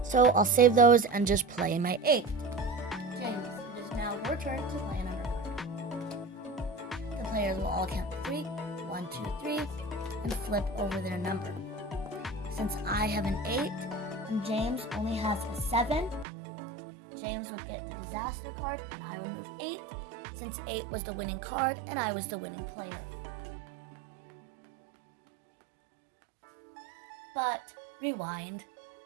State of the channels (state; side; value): drops out; left; at 16.2 s